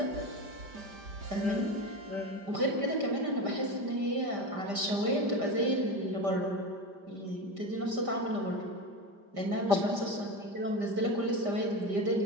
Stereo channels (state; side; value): late; left; 5.1 ms